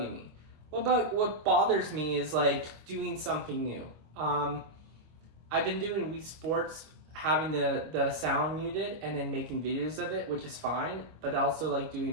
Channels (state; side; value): late; left; 25 ms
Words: me. What bothers me is doing something new. I've been doing Wii Sports, having the sound muted and then making videos of it, which is fine, but also doing